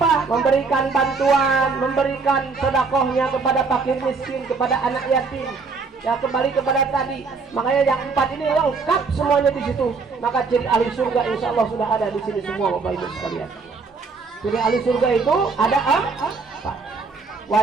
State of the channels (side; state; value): left; quieter; 4.5 dB